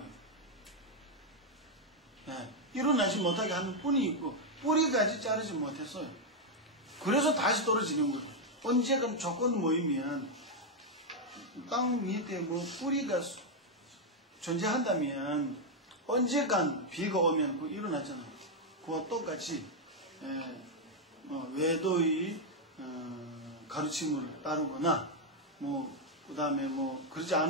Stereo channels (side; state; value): both; normal; correlation 0.01